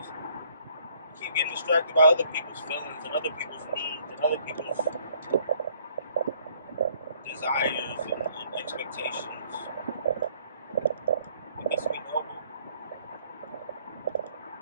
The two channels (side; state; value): both; inverted; correlation -0.63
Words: I keep getting distracted by other people's feelings and other people's needs and other people's desires and expectations. Because we know it.